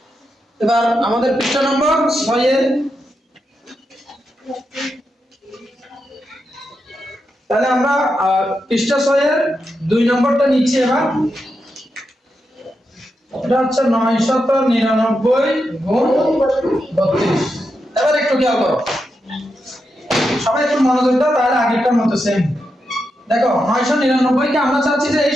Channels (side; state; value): both; normal; correlation 0.86